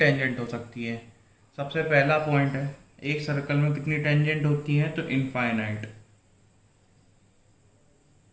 हो सकती है, सबसे पहला पॉइंट है एक सर्कल में कितनी टेंजेंट होती है, तो इनफाइनाइट।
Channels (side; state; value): both; identical; correlation 1.00